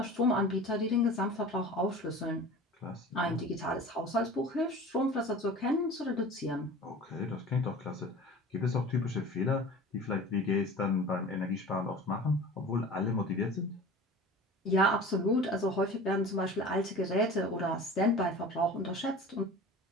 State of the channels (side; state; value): both; normal; correlation 0.39